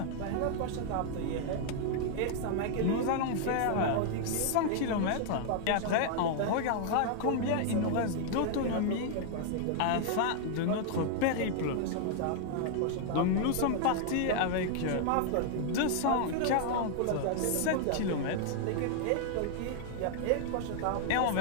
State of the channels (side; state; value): both; different; correlation 0.00